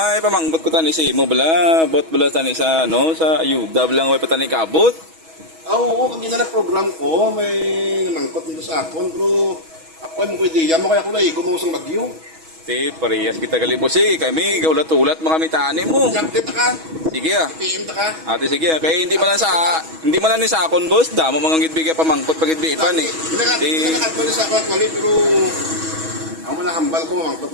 pamangkot ko tani si mo bala, bot bala tani sa sa ayuda blang way patani kabot. Oo, kung program ko, may namangkot nito sa akon, pero ako mo ko ideya mo kaya ko na gumausang bagyo. Ti, parehas kita kalibos kami ulat-ulat mga mitani mo. Update ka, Sige PM ta ka. Ate sige kay hindi man lang ni sakon boss, damo mga gidbigay pamangkot pagidbipan eh. Nakakatwa sa ako actually, pero ako malahambal ko mamangkot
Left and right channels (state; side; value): late; left; 6.2 ms